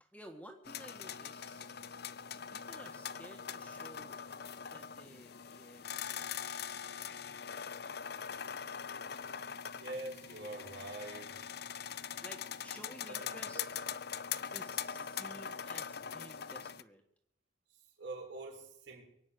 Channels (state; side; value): quieter; right; 5.7 dB